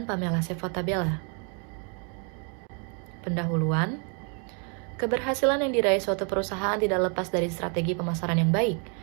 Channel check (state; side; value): quieter; left; 38.1 dB